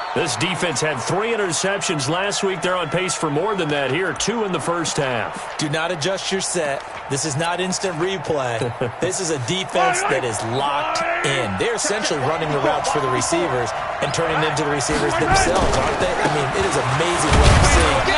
This defense had 3 interceptions last week. They're on pace for more than that here. 2 in the first half. Do not adjust your set. This is not instant replay. This is a defense that is locked in. They're essentially running the routes for the receivers and turning them to the receivers themselves, aren't they? I mean, it is amazing what I'm seeing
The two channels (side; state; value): both; identical; correlation 1.00